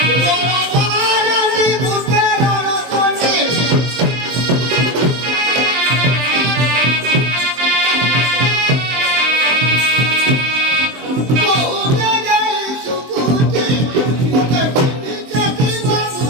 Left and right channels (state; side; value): late; left; 23 ms